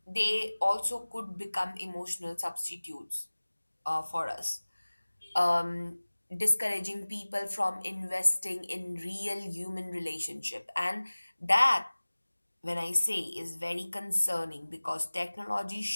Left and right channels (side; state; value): both; inverted; correlation -1.00